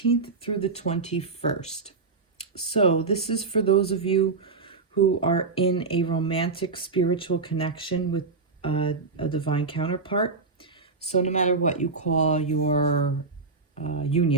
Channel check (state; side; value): quieter; left; 4.2 dB